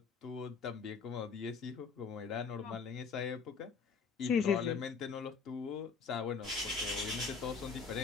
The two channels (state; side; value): quieter; right; 5.5 dB